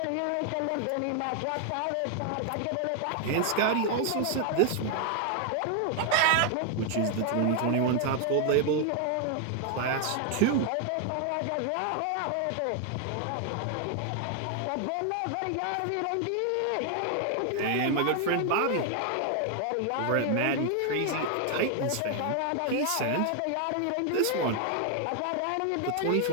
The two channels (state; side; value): different; both; correlation 0.00